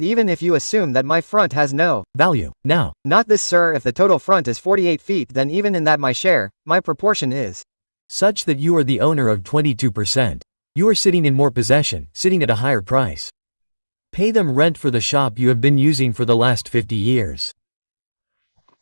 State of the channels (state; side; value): inverted; both; correlation -1.00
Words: even if you assume that my front has no value, now. Not this sir, if the total front is 48 feet then even in that my share, my proportion is such that you are the owner of 22%. You are sitting in more possession, sitting at a higher price. Pay them rent for the shop you have been using for the last 50 years.